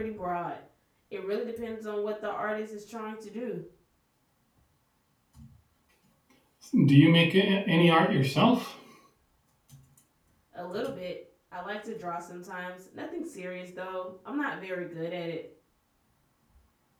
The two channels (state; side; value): identical; both; correlation 1.00